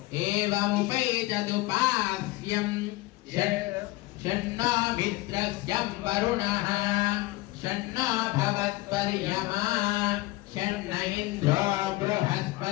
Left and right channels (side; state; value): right; quieter; 19.8 dB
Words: एवमुपैतदुपास्यम् षण्णो मित्रस्यं वरुणः षण्णो भवत्पर्यमा षण्ण इन्द्रो